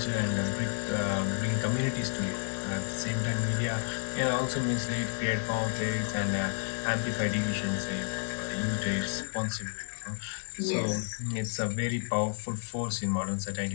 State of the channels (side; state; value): right; silent; 57 dB below the other